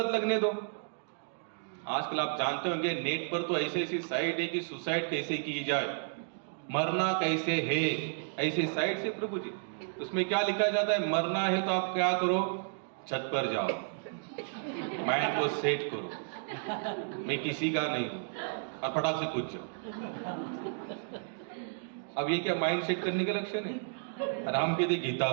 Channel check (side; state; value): left; silent; digital silence